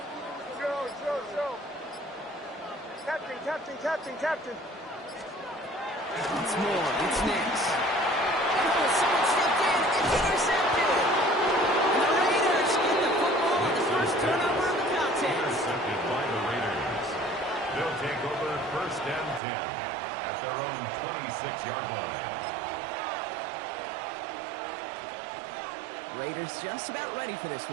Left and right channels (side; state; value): left; drops out; at 19.4 s